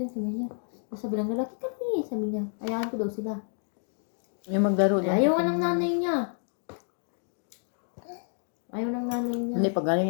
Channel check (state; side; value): silent; right; 58 dB below the other